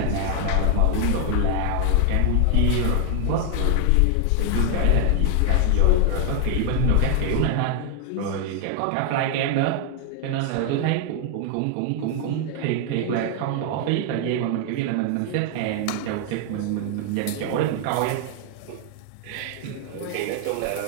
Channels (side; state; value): both; different; correlation 0.00